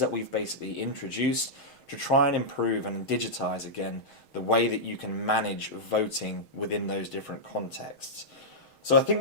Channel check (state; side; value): late; right; 6.3 ms